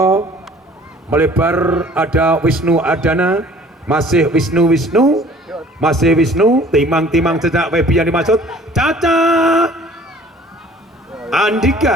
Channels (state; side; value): normal; both; correlation 0.51